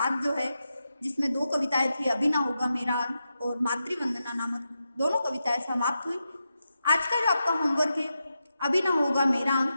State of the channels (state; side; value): inverted; both; correlation -0.88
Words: जो है, जिसमें 2 कविताएं थी, अभी ना होगा मेरा अंत और मातृवंदना नामक दोनों कविताएं समाप्त हुई। आज का जो आपका होमवर्क है, अभी ना होगा मेरा